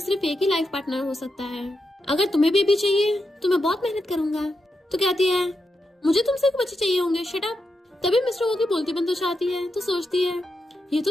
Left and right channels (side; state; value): both; normal; correlation 0.86